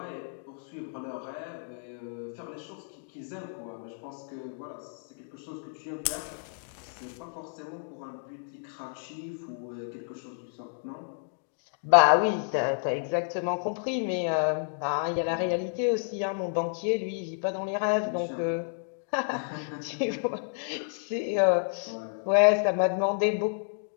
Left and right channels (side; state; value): right; silent; digital silence